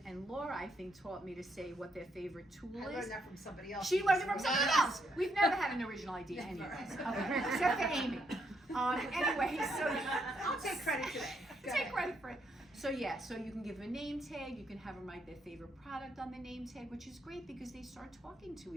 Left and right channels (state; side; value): normal; both; correlation 0.75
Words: And Laura, I think, taught me to say what their favorite tool is. I learned that from somebody else. She learned it from somebody else. We've never had an original idea anyway. Except for Amy. Anyway, so I'll take credit today. Take credit for it. So yeah, so you can give them a name tag, you can have them write their favorite product on the name tag, which is great because they start talking to